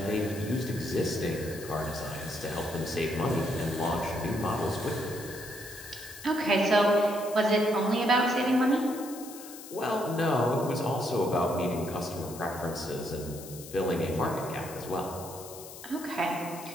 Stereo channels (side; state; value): left; noise; hiss, 14 dB below the sound